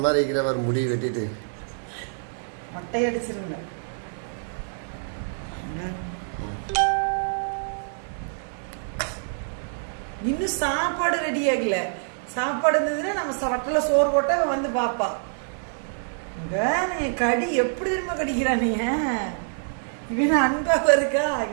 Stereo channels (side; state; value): left; silent; 61 dB below the other